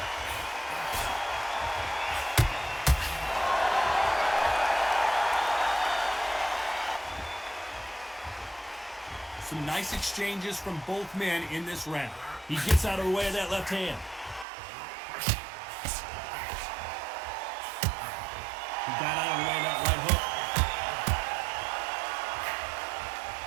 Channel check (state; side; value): drops out; left; at 14.5 s